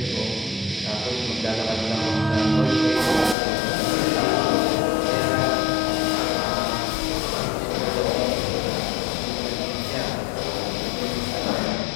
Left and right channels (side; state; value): right; drops out; at 3.4 s